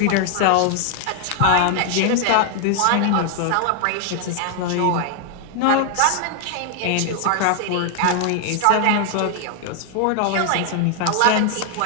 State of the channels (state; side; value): different; both; correlation 0.00